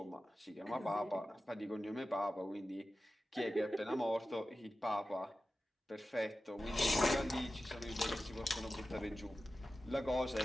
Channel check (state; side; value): normal; both; correlation 0.94